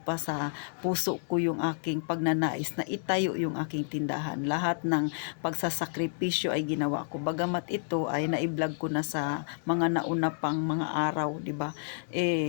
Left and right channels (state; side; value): silent; right; digital silence